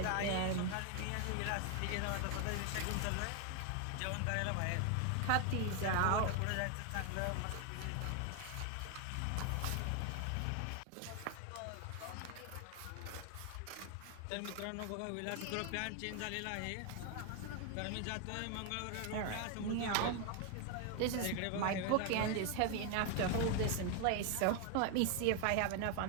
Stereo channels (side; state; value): both; different; correlation 0.01